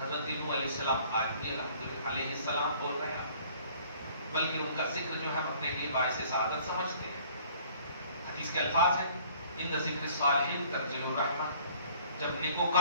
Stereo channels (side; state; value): both; inverted; correlation -0.55